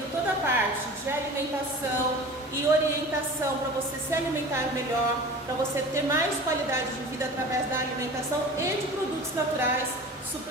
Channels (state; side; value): normal; both; correlation 0.38